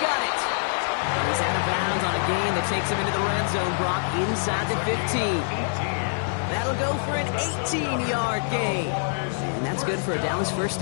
it. He's out of bounds on a gain that takes him into the red zone, Brock, inside the 15. That'll go for an 18-yard gain. And that's good for a Dallas first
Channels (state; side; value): silent; right; digital silence